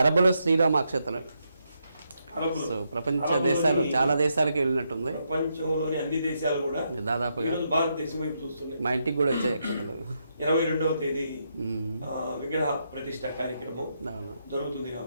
అరబులో శ్రీరామ అక్షతలు ప్రపంచ దేశాలు చాలా దేశాలకి వెళ్ళినట్టుంది. ప్రపంచంలోని అన్ని దేశాలు కూడా దాదాపుగా భారతదేశం వైపు చూస్తున్నాయి. మా ఇంటికి కూడా వచ్చాయి అక్షతలు. 22వ తేదీ విగ్రహ ప్రతిష్ట కార్యక్రమం జరుగుతుంది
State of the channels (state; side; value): inverted; both; correlation -0.81